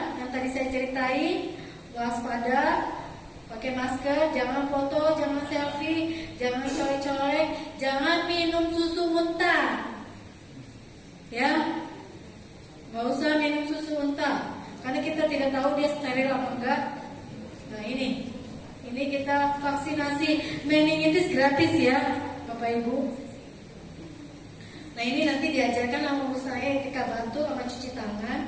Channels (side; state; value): both; identical; correlation 1.00